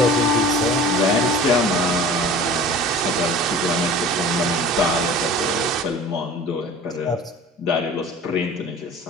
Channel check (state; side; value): normal; both; correlation 0.41